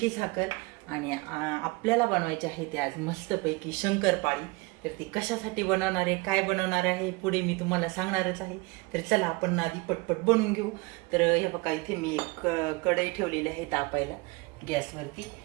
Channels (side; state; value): left; quieter; 25.2 dB